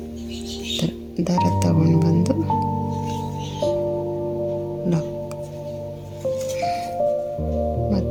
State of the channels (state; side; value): identical; both; correlation 1.00